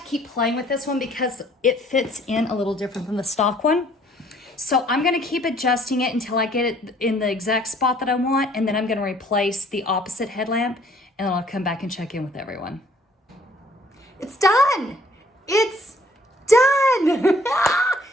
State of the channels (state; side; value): normal; both; correlation 0.60